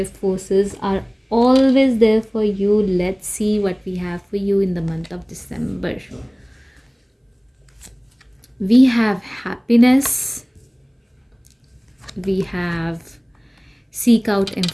forces are always there for you. Let's see what we have for you in the month of December. We have happiness. We have seek out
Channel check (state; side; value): identical; both; correlation 1.00